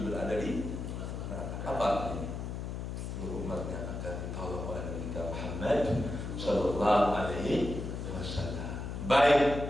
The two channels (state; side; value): noise; left; hum, 5 dB below the sound